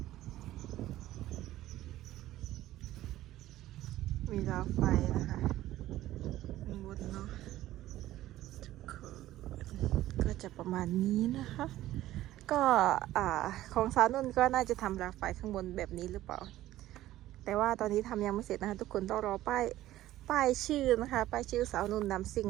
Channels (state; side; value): quieter; left; 14.8 dB